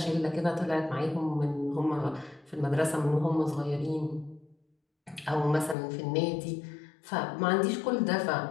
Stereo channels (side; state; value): right; drops out; at 5.8 s